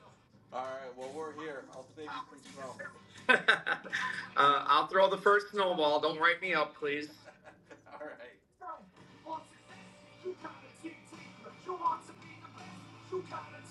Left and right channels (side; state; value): both; identical; correlation 1.00